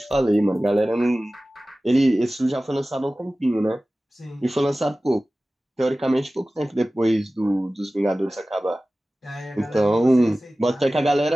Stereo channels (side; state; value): both; normal; correlation 0.97